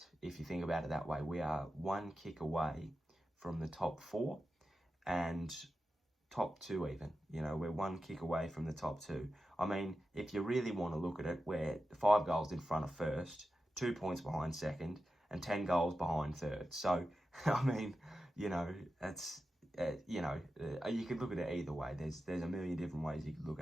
if you think about it that way. We are 1 kick away from the top 4 and top 2 even. We're 1 kick away from the top 2. I mean, if you really want to look at it, we're 5 goals in front of first, 2 points behind second, and 10 goals behind third. So, I mean, that's, you could look at it either way. There's a million different ways you could look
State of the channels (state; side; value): normal; both; correlation 0.91